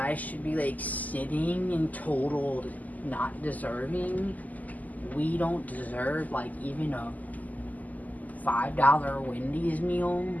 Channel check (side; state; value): right; late; 0.079 ms